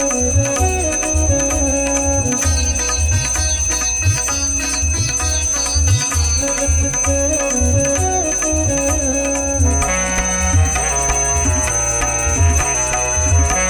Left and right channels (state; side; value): identical; both; correlation 1.00